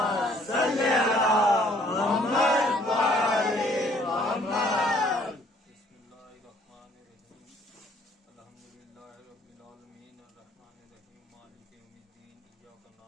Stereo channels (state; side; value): normal; both; correlation 0.60